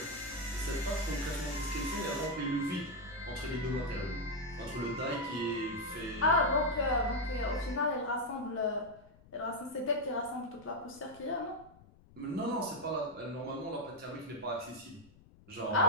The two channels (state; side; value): noise; left; rumble, 24 dB below the sound